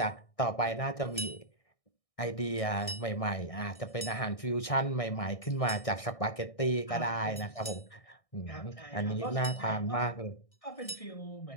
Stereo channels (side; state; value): right; late; 1.6 ms